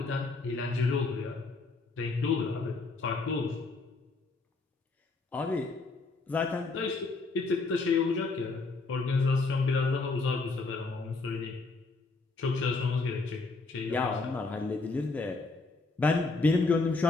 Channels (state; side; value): quieter; right; 3.7 dB